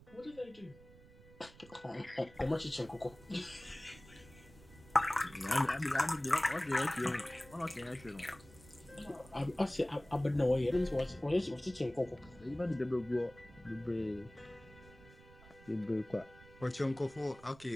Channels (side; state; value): right; noise; rumble, 22 dB below the sound